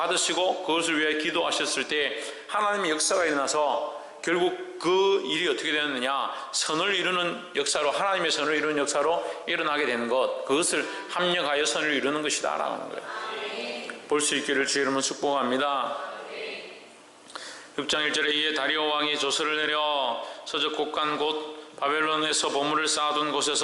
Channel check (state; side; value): identical; both; correlation 1.00